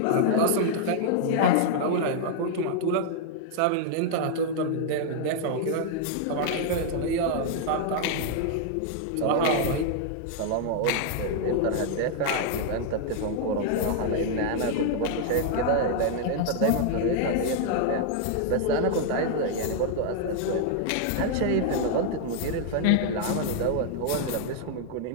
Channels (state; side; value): different; both; correlation 0.00